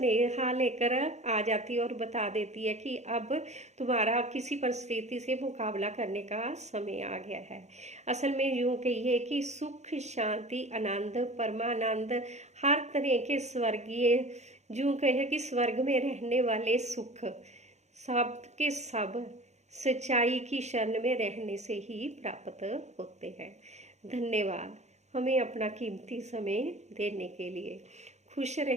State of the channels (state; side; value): late; left; 0.33 ms